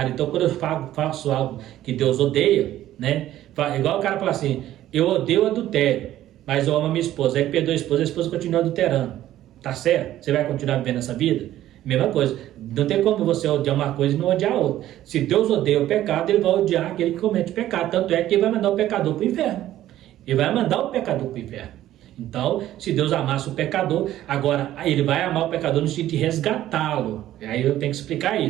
Então, quando eu faço algo que Deus odeia, né? Igual o cara fala assim: eu odeio o adultério, mas eu amo a minha esposa. Aí perdoa a esposa continua adulterando. Tá certo? Você vai continuar vivendo essa vida? Mesma coisa. Não tem como você odiar uma coisa e não odiar a outra. Se Deus odeia o pecado, ele vai odiar aquele que comete pecado. Tanto é que ele vai mandar o pecador para o inferno. Ele vai mandar o pecador para o inferno. Então, se Deus amasse o pecador, agora ele vai amar o pecador no sentido de resgatá-lo. Aí eu tenho que explicar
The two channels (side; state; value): left; quieter; 13.3 dB